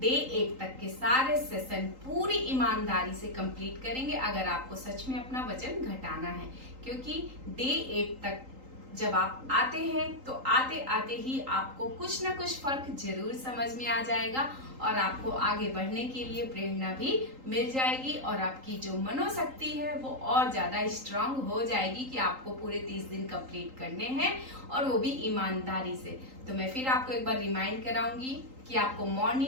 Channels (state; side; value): late; left; 3.8 ms